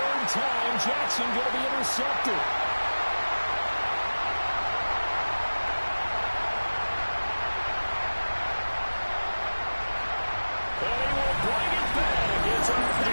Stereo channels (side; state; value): both; inverted; correlation -1.00